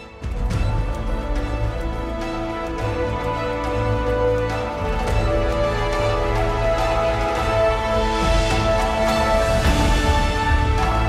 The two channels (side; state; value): both; identical; correlation 1.00